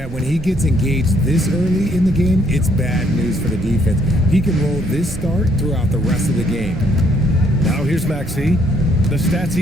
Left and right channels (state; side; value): noise; right; rumble, 13 dB below the sound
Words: when he gets engaged this early in the game, it's bad news for the defense. He can roll this start throughout the rest of the game. Now here's Maxey. The stats